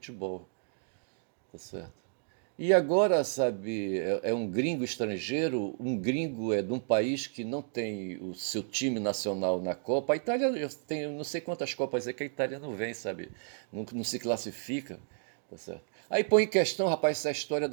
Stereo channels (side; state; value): left; silent; digital silence